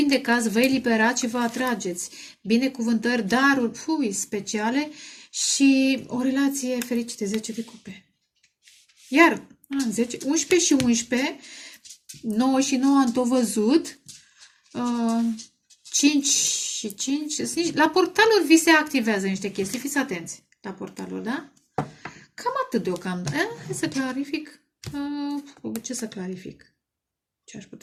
vă eliberați și vă atrageți binecuvântări, daruri speciale și o relație fericită, 10 de cupe. Iar 10, 11 și 11, 9 și 9 am tot văzut, 5 și 5, la portaluri vi se activează niște chestii, fiți atenți la portaluri, da? Cam atât deocamdată. Hai să clarific. Ce să clarific? Ce aș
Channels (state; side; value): identical; both; correlation 1.00